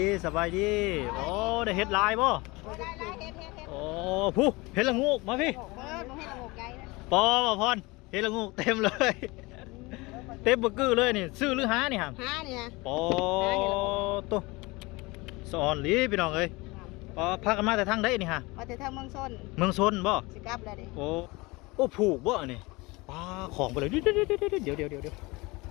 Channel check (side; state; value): right; quieter; 23.8 dB